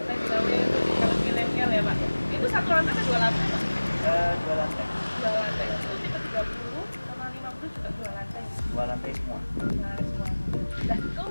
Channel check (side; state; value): both; inverted; correlation -1.00